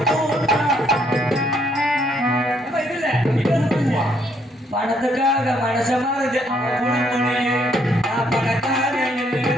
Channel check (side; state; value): both; normal; correlation 0.70